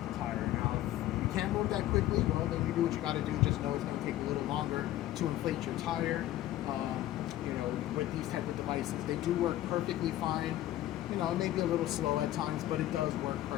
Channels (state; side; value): quieter; right; 14.1 dB